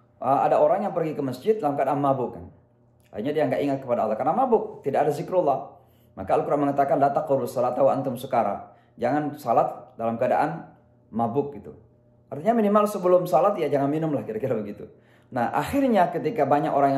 Ada orang yang pergi ke masjid dalam keadaan mabuk. Kan. Akhirnya dia nggak ingat kepada Allah karena mabuk, tidak ada zikrullah. Maka Al-Quran mengatakan la taqrabus salata wa antum sukara. Jangan salat dalam keadaan mabuk gitu. Artinya minimal sebelum salat ya jangan minum lah kira-kira begitu. Nah, akhirnya ketika banyak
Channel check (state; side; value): identical; both; correlation 1.00